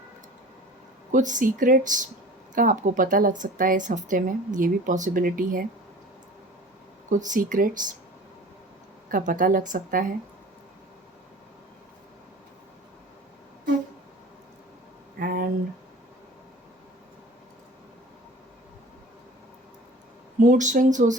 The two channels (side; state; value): both; normal; correlation 0.42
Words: कुछ सीक्रेट्स का आपको पता लग सकता है इस हफ्ते में, ये भी पॉसिबिलिटी है। कुछ सीक्रेट्स का पता लग सकता है। एंड मूड स्विंग्स हो